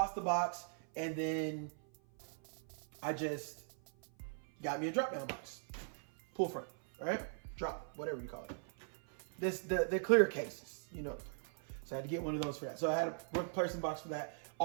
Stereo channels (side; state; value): left; silent; 51 dB below the other